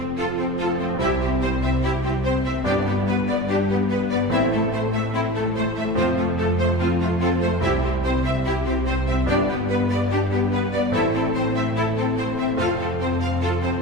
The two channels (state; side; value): noise; left; rumble, 19 dB below the sound